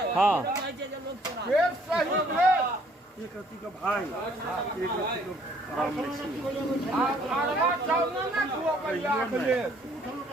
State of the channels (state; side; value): normal; both; correlation 0.61